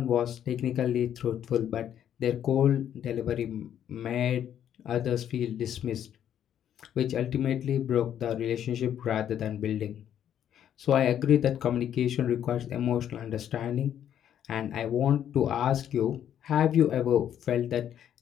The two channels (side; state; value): right; quieter; 10.0 dB